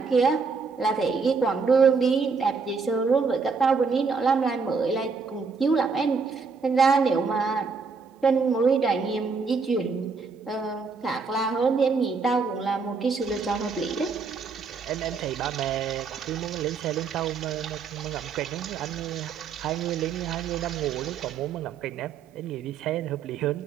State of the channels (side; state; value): left; quieter; 5.0 dB